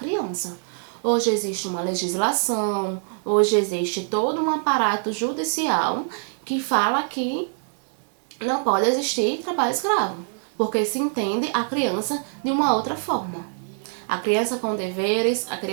Hoje existe uma legislação, hoje existe todo um aparato judicial que fala que não pode existir trabalho escravo, porque se entende a criança de uma outra forma. A criança com deveres, a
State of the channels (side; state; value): left; silent; digital silence